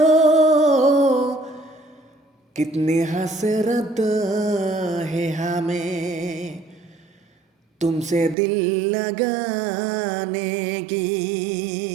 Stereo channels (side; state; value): left; drops out; at 8.3 s